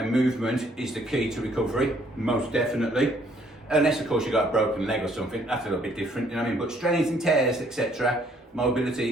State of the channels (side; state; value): both; normal; correlation 0.64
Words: movement is the key to recovery, most definitely. Unless of course you've got a broken leg or something, that's a little bit different, you know what I mean? But strains and tears, etc.,